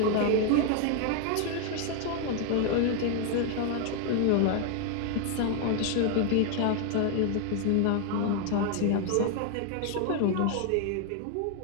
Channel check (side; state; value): both; different; correlation 0.00